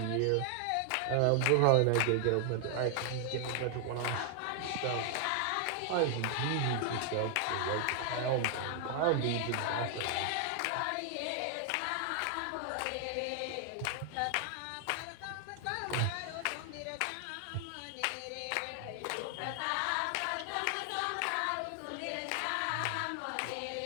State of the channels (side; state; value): both; different; correlation 0.00